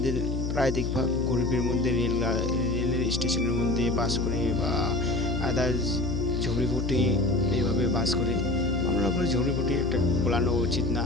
প্রায় দেখবা গরিবের মধ্যে রেলের স্টেশনের মধ্যে বাস করে বা আদার্স ঝুড়িপুটি এইভাবে বাস করে। আমরা করে ঝুড়িপুটি একটা বলানো উচিত না,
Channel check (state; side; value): noise; left; hum, 2 dB below the sound